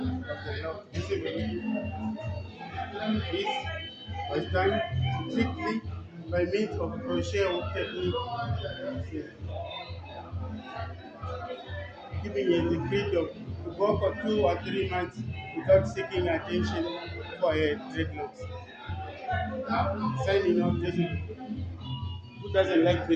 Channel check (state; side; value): identical; both; correlation 1.00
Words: lock. This was done strictly by means of crochet hook technique, giving you the freedom to go for 2 or 3 months without seeking attention for a dreadlocks. Signing off, who doesn't like